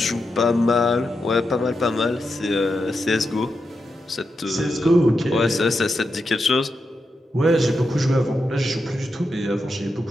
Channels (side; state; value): both; normal; correlation 0.87